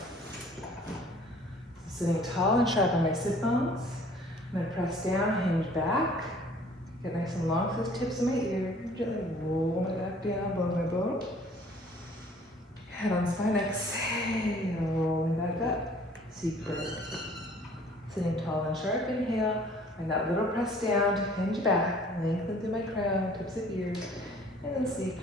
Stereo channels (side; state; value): both; normal; correlation 0.54